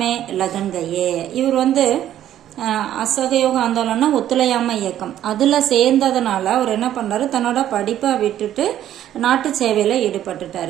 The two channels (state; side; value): quieter; left; 11.7 dB